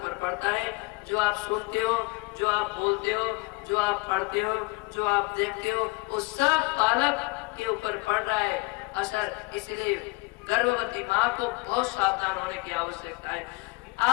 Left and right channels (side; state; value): right; quieter; 26.3 dB